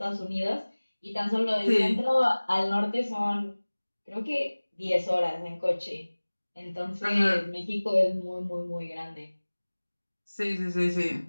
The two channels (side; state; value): both; inverted; correlation -1.00